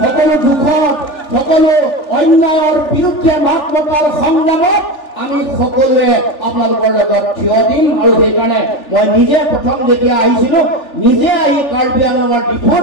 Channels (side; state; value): right; late; 3.4 ms